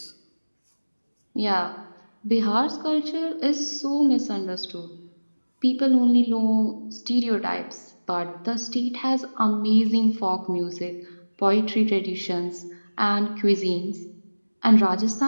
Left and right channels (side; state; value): both; inverted; correlation -1.00